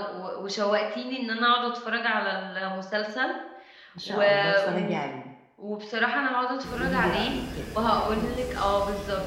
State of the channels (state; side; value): identical; both; correlation 1.00